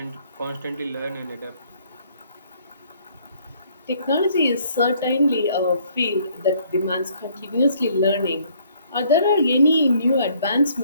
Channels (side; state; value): both; inverted; correlation -0.63